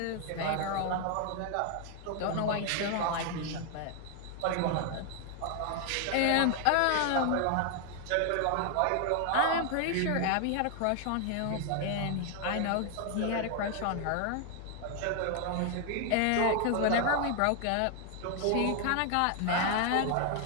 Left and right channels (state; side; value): different; both; correlation 0.00